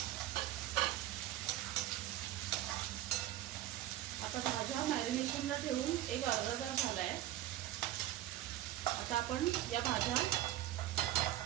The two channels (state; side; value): quieter; left; 13.6 dB